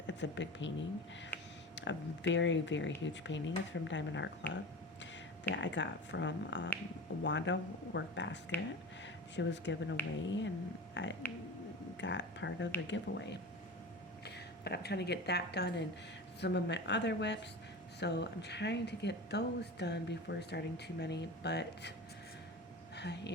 It's a big painting, a very, very huge painting. It's from Diamond Art Club that I got from Wanda Work Basket. She was given away, and I got part of the giveaway. But I'm trying to get that done, and some of my other whips. So I'm trying to get those done before starting too many. But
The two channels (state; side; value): normal; both; correlation 0.31